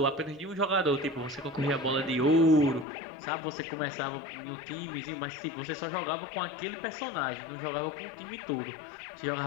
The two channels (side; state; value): right; drops out; at 2.9 s